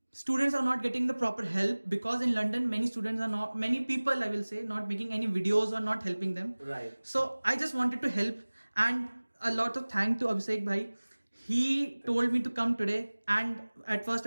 students are not getting the proper help, because in London many people, I will say, not making any videos or not helping them. Right. So I just wanted to help, and a lot of thanks to Abhishek bhai. He told me to come today, and at first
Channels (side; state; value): both; inverted; correlation -1.00